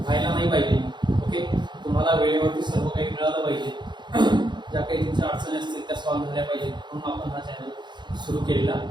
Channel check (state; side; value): late; left; 0.22 ms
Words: नाही पाहिजे. ओके, तुम्हाला वेळेवरती सर्व काही मिळालं पाहिजे, ज्या काही तुमच्या अडचणी असतील त्या सॉल्व्ह झाल्या पाहिजेत, म्हणून आपण हा चॅनल सुरू केलेला